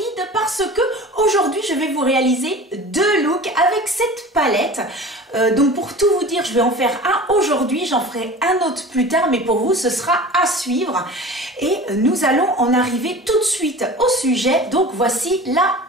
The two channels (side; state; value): both; normal; correlation 0.38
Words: parce que aujourd'hui je vais vous réaliser deux looks avec cette palette. Donc pour tout vous dire, je vais en faire un aujourd'hui, j'en ferai un autre plus tard, mais pour vous ce sera à suivre. Et nous allons en arriver tout de suite au sujet. Donc voici la